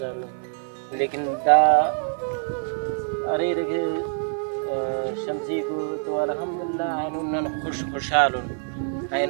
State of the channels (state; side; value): silent; left; 56 dB below the other